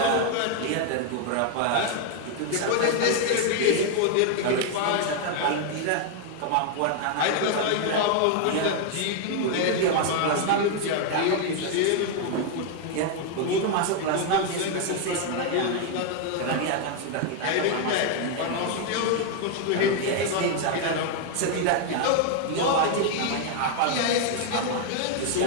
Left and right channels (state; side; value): different; both; correlation 0.00